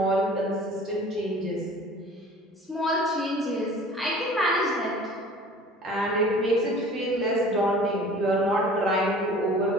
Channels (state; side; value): normal; both; correlation 0.46